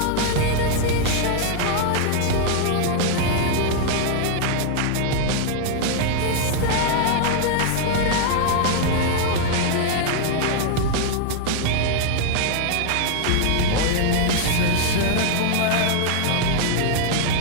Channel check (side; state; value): both; different; correlation 0.00